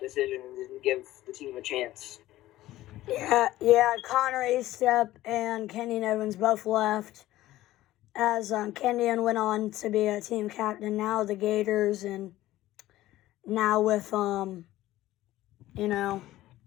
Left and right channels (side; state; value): right; quieter; 15.5 dB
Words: decision and didn't give the team a chance. Yeah, Connor Estep and Kenyon Evans both left as Kenyon went on to be a team captain, now the Gators, and now with, Connor